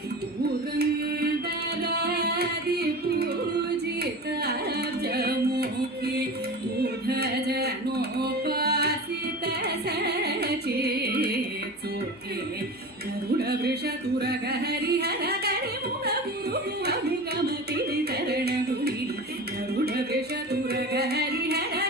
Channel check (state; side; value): noise; left; hum, 30 dB below the sound